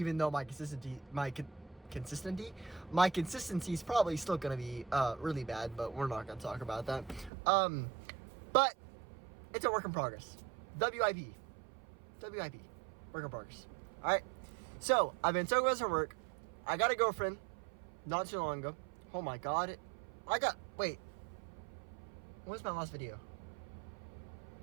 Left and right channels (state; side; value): drops out; left; at 7.3 s